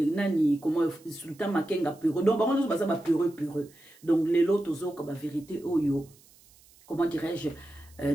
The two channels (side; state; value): right; noise; hiss, 27 dB below the sound